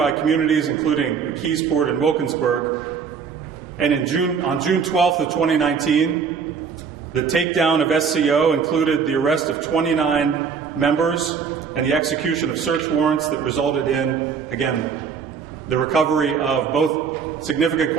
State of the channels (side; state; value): left; quieter; 6.3 dB